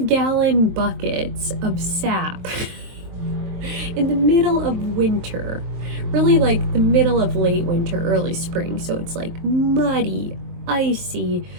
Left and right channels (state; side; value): late; left; 23 ms